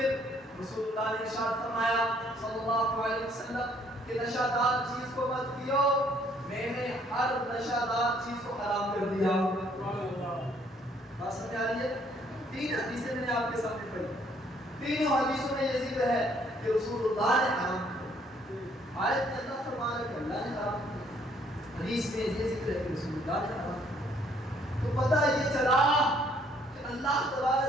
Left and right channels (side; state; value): both; normal; correlation 0.64